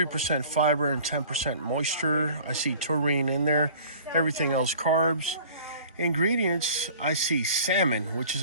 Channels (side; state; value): both; inverted; correlation -0.48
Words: fiber, and 10% moisture. I see taurine in there. Everything else carbs. Ingredients, I see salmon, which is